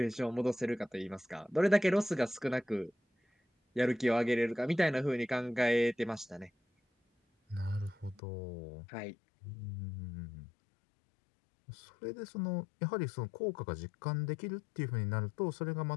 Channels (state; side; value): drops out; right; at 8.2 s